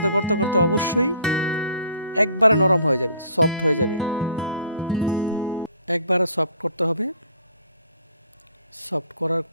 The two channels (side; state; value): both; inverted; correlation -0.55